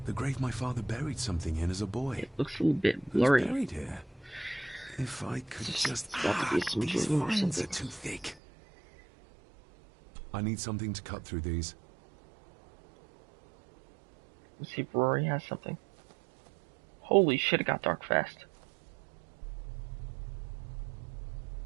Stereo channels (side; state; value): left; drops out; at 8.3 s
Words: The grave my father buried something in as a boy. It looks a little bit blurry. Who's buried here? If I could just... It's got to be some these dream or vines something. are too thick. I need something to cut through these. Let's see if Rory has something. Holy shit, it got dark fast.